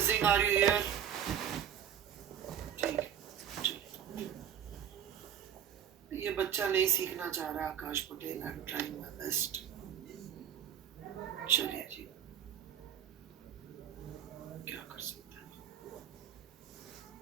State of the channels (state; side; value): quieter; left; 9.4 dB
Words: are you here? ठीक है. ये बच्चा नहीं सीखना चाह रहा Akash Patel, I am trying my best. चलिए जी, क्या कर सकते हैं.